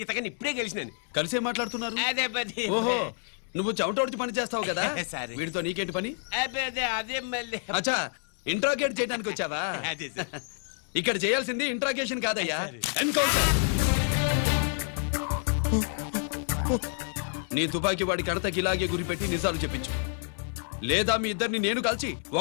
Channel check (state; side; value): silent; right; 57 dB below the other